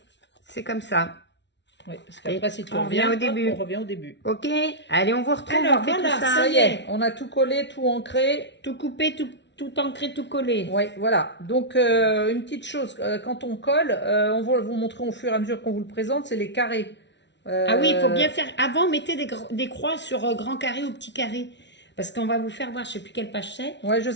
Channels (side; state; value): right; late; 0.51 ms